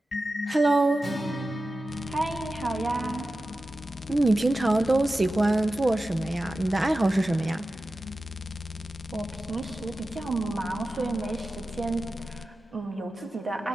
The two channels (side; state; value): both; normal; correlation 0.94